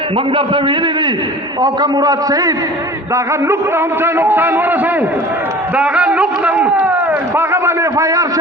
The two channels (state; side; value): normal; both; correlation 0.42